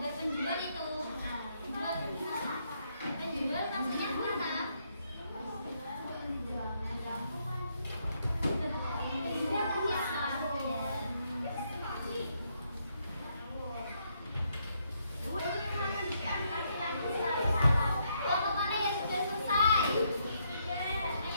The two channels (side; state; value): both; inverted; correlation -0.75